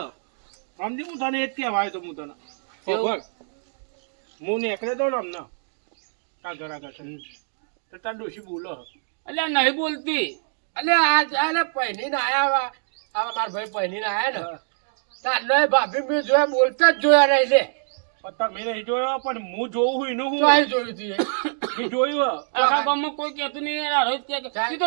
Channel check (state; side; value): silent; left; digital silence